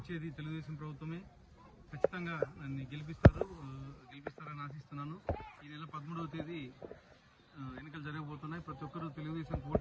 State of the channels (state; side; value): identical; both; correlation 1.00